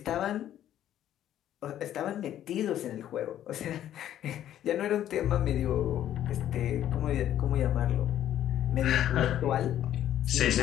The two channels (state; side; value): quieter; right; 11.5 dB